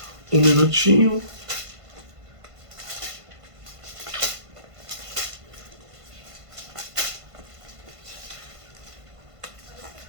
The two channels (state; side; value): late; left; 1.5 ms